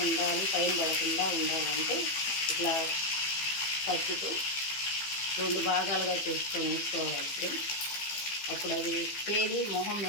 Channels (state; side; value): late; right; 15 ms